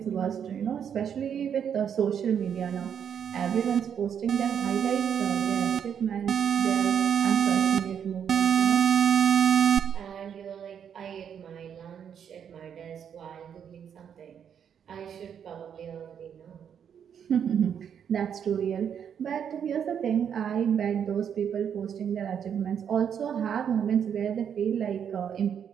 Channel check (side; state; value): left; quieter; 8.2 dB